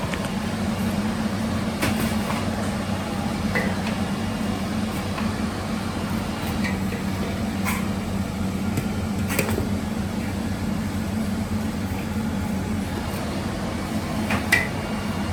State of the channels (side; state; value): both; identical; correlation 1.00